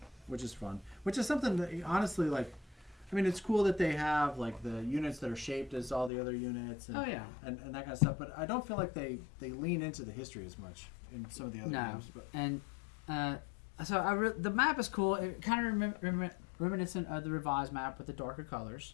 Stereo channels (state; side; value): drops out; right; at 6.1 s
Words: which is fun. Which is something that honestly I mean, it's cool that they have like the units that are shaped as all the other units. And, Oh, yeah. and that kind of stuff. But I don't feel like they lean into the history as much in some of the other games. But. And so the map is cool. It kind of reminiscent of the revised map with the darker colors.